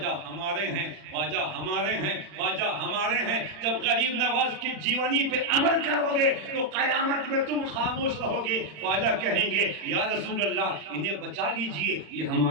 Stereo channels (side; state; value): left; late; 40 ms